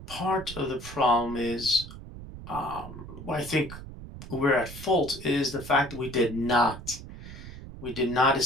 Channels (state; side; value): noise; right; rumble, 13 dB below the sound